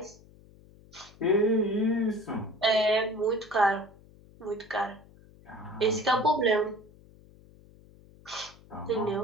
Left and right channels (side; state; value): left; noise; hum, 24 dB below the sound